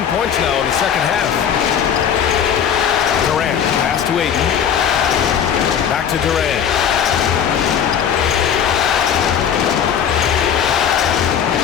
points now in the second half. Durant, pass to Ayton. Back to Durant.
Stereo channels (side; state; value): right; quieter; 8.4 dB